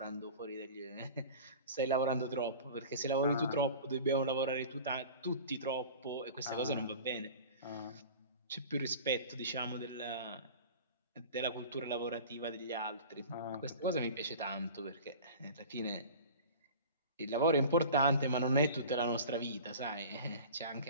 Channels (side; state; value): both; inverted; correlation -0.38